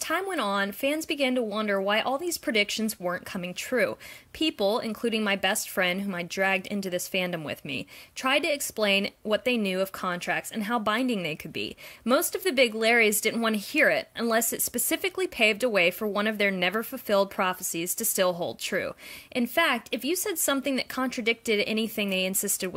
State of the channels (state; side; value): identical; both; correlation 1.00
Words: went on, fans began to wonder why all these predictions weren't coming true. People, including my best friend whom I dragged into this fandom with me, tried to explain what they knew of contracts and how binding they could be. Most of the big Larries didn't want to hear it, unless it specifically paved a way for one of their never-fulfilled prophecies to still hold true. In fact, if you said something that contradicted anything they insisted